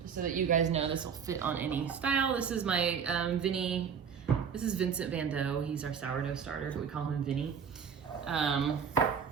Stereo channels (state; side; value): quieter; left; 6.9 dB